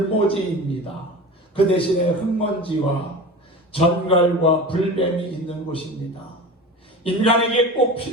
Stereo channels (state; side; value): normal; both; correlation 0.32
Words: 그 대신에 흙먼지와 전갈과 불뱀이 있는 곳입니다. 인간에게 꼭